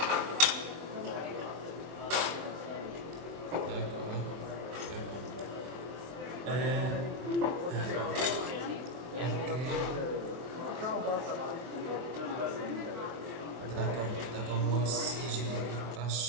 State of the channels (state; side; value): late; left; 23 ms